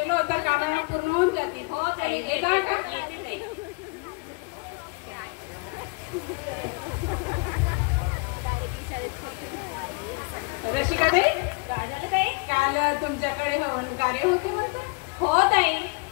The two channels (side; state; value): right; quieter; 31.6 dB